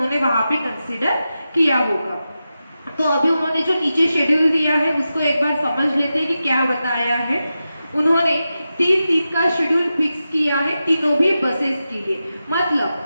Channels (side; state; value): both; inverted; correlation -0.91